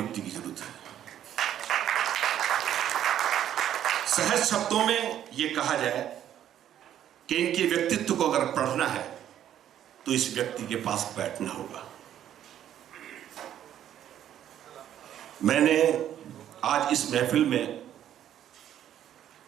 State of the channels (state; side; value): quieter; left; 10.8 dB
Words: की जरूरत है। सहज शब्दों में यह कहा जाए कि इनके व्यक्तित्व को अगर पढ़ना है तो इस व्यक्ति के पास बैठना होगा। मैंने आज इस महफिल में